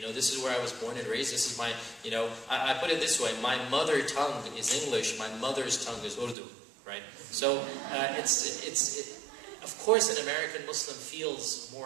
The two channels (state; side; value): drops out; left; at 6.4 s